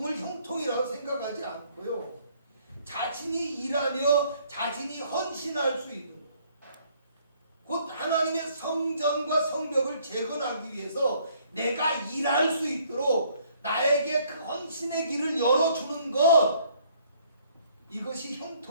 형통이라고 생각하지 않고요 자신이 일하며 자신이 헌신할 수 있는 곧 하나님의 성전과 성벽을 재건하기 위해서 내가 일할 수 있도록 나에게 그 헌신의 길을 열어주는 것, 이것이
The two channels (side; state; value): both; inverted; correlation -0.63